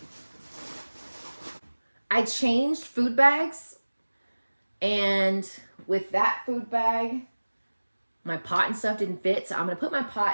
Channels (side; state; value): both; inverted; correlation -1.00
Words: I changed food bags, and with that food bag, my pot and stuff didn't fit, so I'm gonna put my